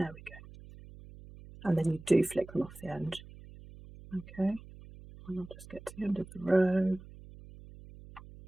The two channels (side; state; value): right; noise; hum, 18 dB below the sound